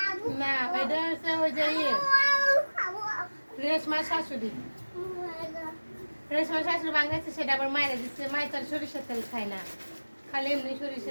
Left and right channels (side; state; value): both; inverted; correlation -1.00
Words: না, এটা হচ্ছে ওই যে রেশমার শাশুড়ি। রেশমার শাশুড়ি ভাঙ্গাচ্ছে, সেটা আবার মায়েরা দিচ্ছে। মায়ের তার সরিষার তেল খায় না, খালি এমনি